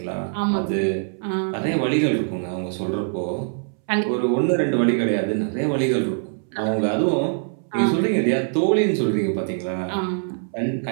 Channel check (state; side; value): silent; left; 63 dB below the other